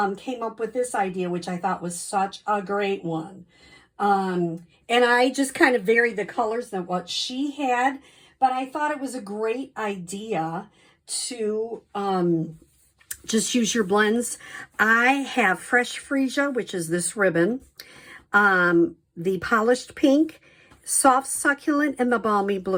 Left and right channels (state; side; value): identical; both; correlation 1.00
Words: came up with this idea, which I thought was such a great one. And I just kind of varied the colors than what she had, but I thought it was a great idea to just use your blends. I have Fresh Freesia, which is this ribbon, the Polished Pink, Soft Succulent, and the Balmy